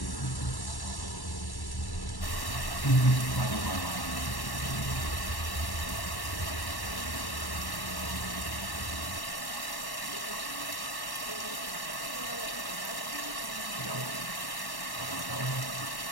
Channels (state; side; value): late; right; 1.1 ms